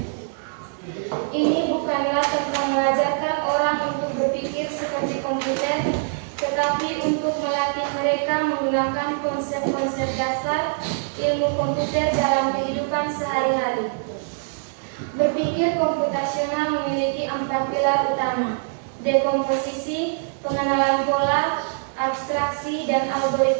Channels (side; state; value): left; silent; digital silence